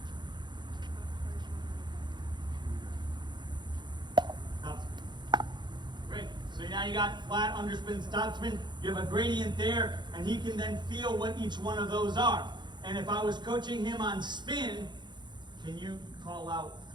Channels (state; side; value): late; left; 0.22 ms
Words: topspin. Great. So now you got flat, underspin, topspin. You have a gradient there, and he can then feel what each one of those are. And if I was coaching him on spin, can you call out